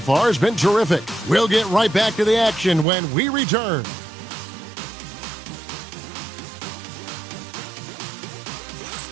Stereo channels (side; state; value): left; drops out; at 2.9 s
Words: has been terrific. We'll get right back to the action when we return.